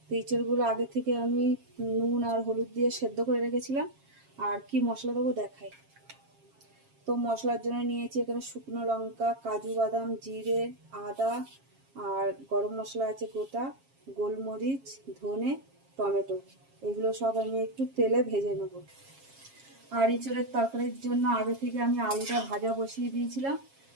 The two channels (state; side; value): late; left; 7.4 ms